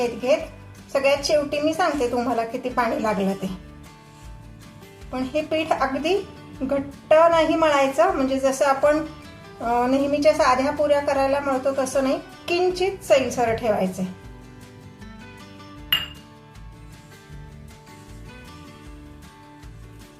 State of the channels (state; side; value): identical; both; correlation 1.00